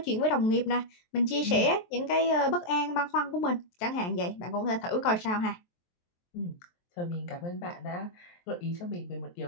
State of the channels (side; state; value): right; late; 23 ms